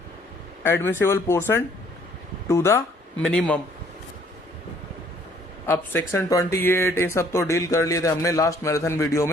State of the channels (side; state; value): both; normal; correlation 0.61